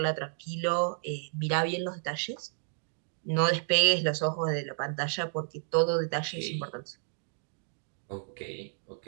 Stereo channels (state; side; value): silent; left; digital silence